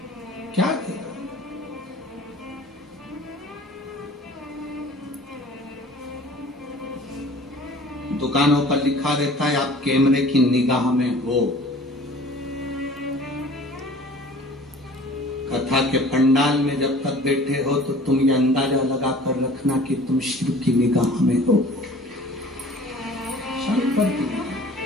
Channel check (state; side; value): normal; both; correlation 0.47